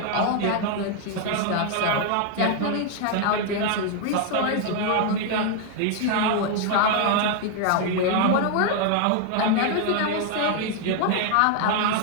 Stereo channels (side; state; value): both; different; correlation 0.00